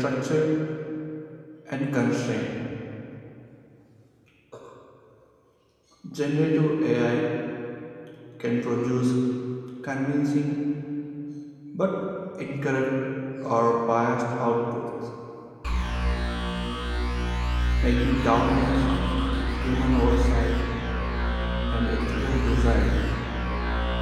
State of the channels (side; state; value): both; identical; correlation 1.00